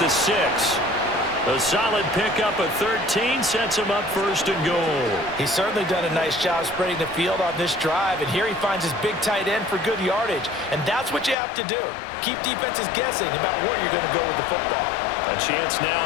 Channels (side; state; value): right; drops out; at 11.4 s